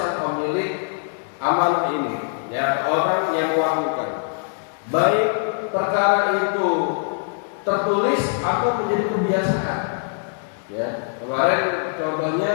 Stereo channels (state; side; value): silent; right; digital silence